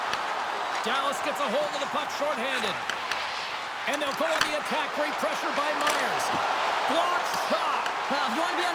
Dallas gets a hold of the puck shorthanded. And they'll go on the attack. Great pressure by Myers. Block shot. Well, if you want to be on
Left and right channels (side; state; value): both; identical; correlation 1.00